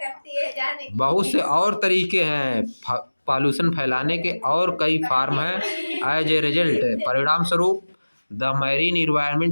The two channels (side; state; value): both; inverted; correlation -1.00